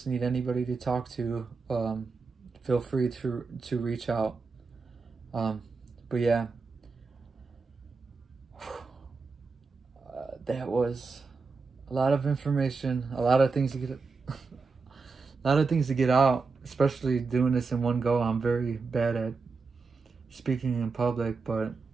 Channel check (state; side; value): quieter; left; 4.5 dB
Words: need anybody to talk to, feel free to reach out. But yeah, that was a lot of information, a lot of things to get, a lot of things to get out, especially doing this in one go. I'm very bad at speaking in public, but